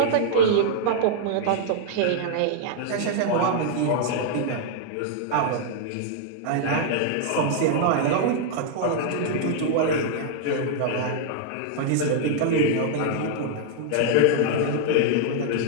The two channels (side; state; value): both; different; correlation -0.01